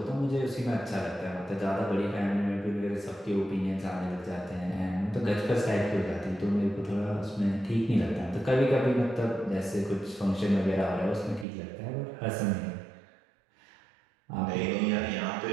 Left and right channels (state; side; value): drops out; left; at 11.5 s